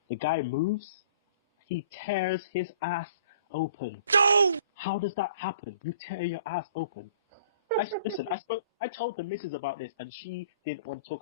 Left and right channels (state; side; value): inverted; both; correlation -0.52